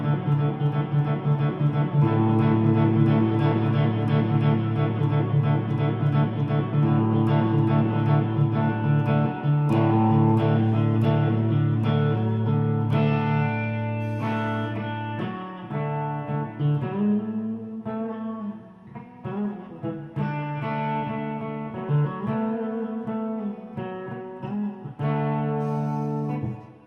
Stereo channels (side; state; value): both; identical; correlation 1.00